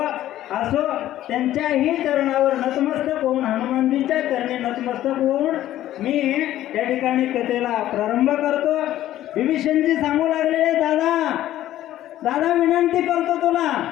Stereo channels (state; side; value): quieter; right; 13.4 dB